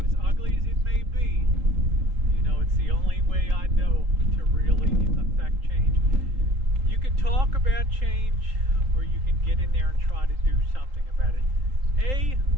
as ugly as it may be, it's the only way I know to really affect change. You can talk about change, or you can get in there and try to do something about it. A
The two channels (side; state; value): left; late; 3.8 ms